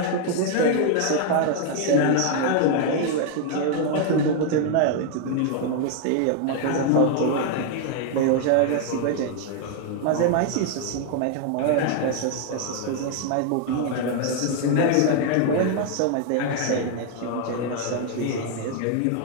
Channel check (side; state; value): both; different; correlation 0.00